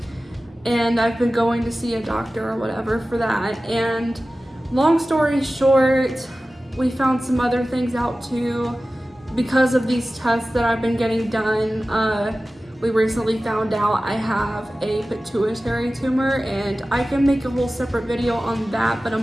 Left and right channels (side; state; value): both; normal; correlation 0.96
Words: and I've been going to see a doctor or whatever for that. And long story short, we found some other things out too because of these tests that I've been getting done. We recently found out I have a pituitary tumor, and I can make a whole separate video on that, but I'm